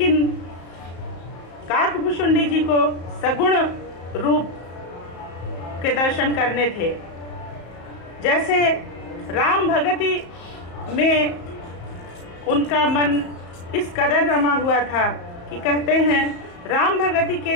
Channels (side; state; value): right; late; 34 ms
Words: काकभूषुंडी जी को सगुण रूप के दर्शन करने थे। जैसे राम भगति में उनका मन इस कदर रमा हुआ था कि कहते हैं राम भगति के